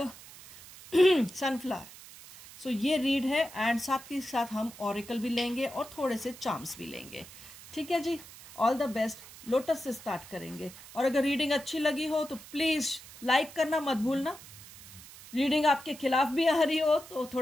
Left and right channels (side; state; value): right; noise; hiss, 18 dB below the sound